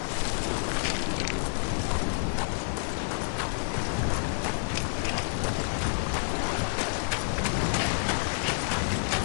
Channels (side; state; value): right; silent; digital silence